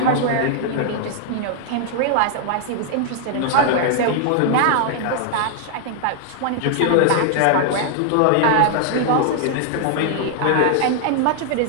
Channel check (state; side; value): different; both; correlation 0.00